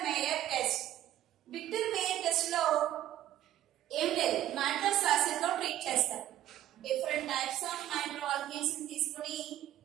Meyer test. Victor Meyer test లో ఏం లేదు, నైట్రస్ యాసిడ్ తో ట్రీట్ చేస్తారు. డిఫరెంట్ టైప్స్ ఆఫ్ నైట్రోఆల్కేన్స్ ని తీసుకుని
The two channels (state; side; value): quieter; left; 12.7 dB